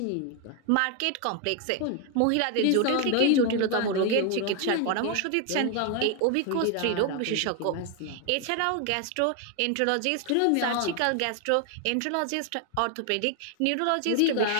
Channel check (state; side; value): different; both; correlation 0.01